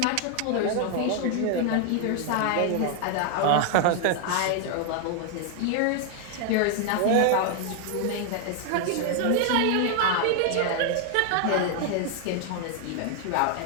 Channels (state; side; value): different; both; correlation 0.00